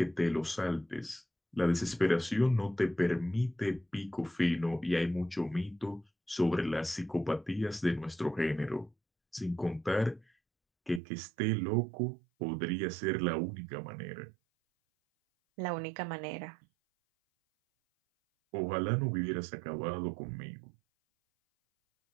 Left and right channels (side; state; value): left; drops out; at 11.0 s